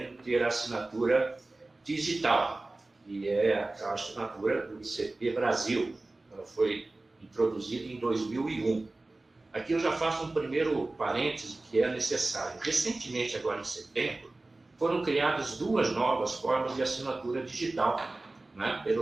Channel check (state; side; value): quieter; left; 3.0 dB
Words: ter assinatura digital, que é a assinatura do ICP Brasil, ela foi introduzida em 2001. Aqui eu já faço um primeiro parêntese que é necessário. Recentemente, agora em setembro, foram criadas 2 novas formas de assinatura digital, né,